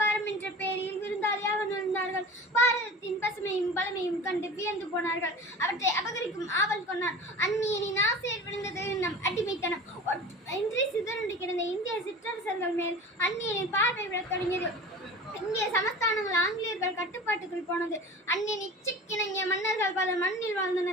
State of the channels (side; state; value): both; normal; correlation 0.36